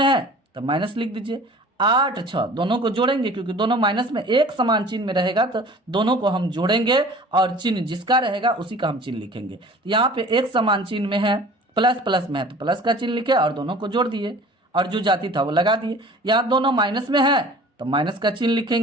है तो माइनस लिख दीजिए। 8 6 दोनों को जोड़ेंगे, क्योंकि दोनों माइनस में एक समान चिन्ह में रहेगा तो दोनों को हम जोड़ेंगे और चिन्ह जिसका रहेगा उसी का हम चिन्ह लिखेंगे। तो यहाँ पे एक समान चिन्ह में है, प्लस प्लस में है तो प्लस का चिन्ह लिखे और दोनों को जोड़ दिए और जो जाति था वो लगा दिए। यहाँ दोनों माइनस में है तो माइनस का चिन्ह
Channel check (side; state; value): both; normal; correlation 0.45